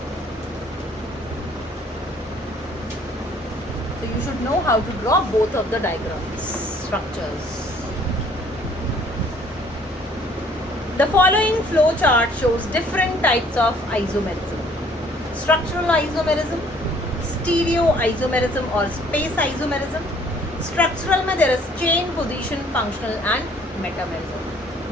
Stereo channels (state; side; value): normal; both; correlation 0.58